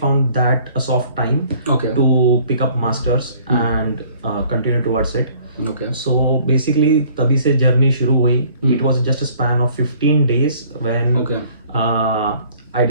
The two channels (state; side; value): inverted; both; correlation -0.56